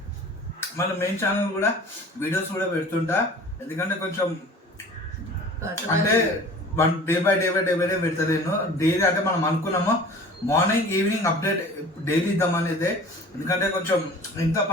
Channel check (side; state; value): both; normal; correlation 0.43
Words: మన మెయిన్ ఛానల్ కూడా వీడియోస్ కూడా పెడుతుంటా. ఎందుకంటే కొంచెం అంటే డే బై డే పెడతలేను. డైలీ అంటే మనం అనుకున్నాము మార్నింగ్ ఈవినింగ్ అప్డేట్ డైలీ ఇద్దామనేది. ఎందుకంటే కొంచెం ఇంత